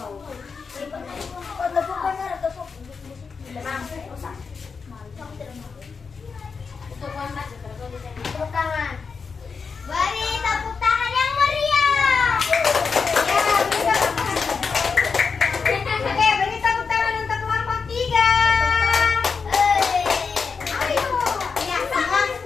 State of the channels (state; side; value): quieter; right; 5.3 dB